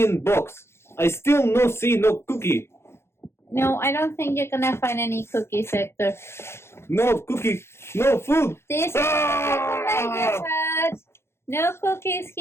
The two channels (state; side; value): late; right; 0.12 ms